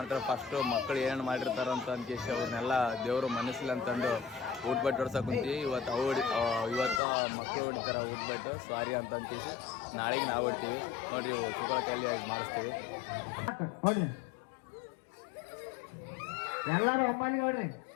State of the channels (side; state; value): right; drops out; at 7.0 s